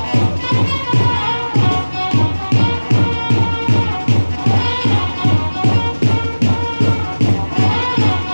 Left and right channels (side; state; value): both; inverted; correlation -1.00